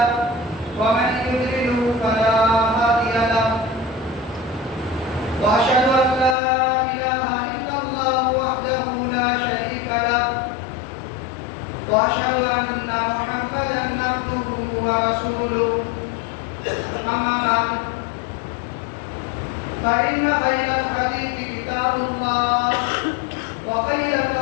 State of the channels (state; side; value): drops out; right; at 6.4 s